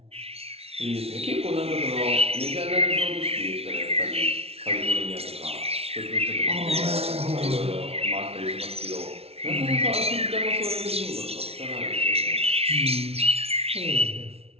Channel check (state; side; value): late; left; 0.30 ms